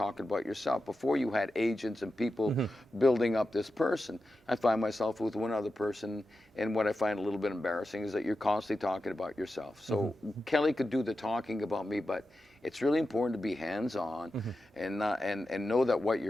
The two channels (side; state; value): both; normal; correlation 0.91